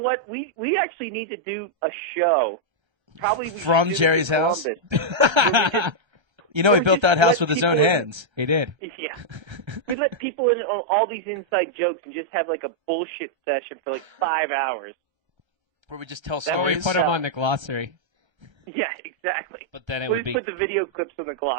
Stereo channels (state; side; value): late; left; 1.3 ms